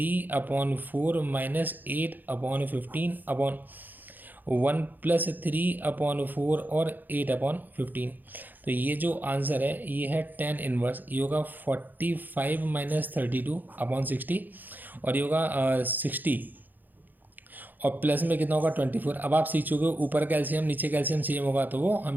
माइनस 8/15 अपॉन 1 + 3/4 और 8/15। तो ये जो आंसर है ये है 10 इनवर्स। ये होगा 45 - 32/60, और ये होगा 60 और प्लस में कितना होगा 24। अब आप सीख चुके हो ऊपर का एलसीएम नीचे का एलसीएम सेम होगा तो वो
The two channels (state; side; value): late; left; 0.086 ms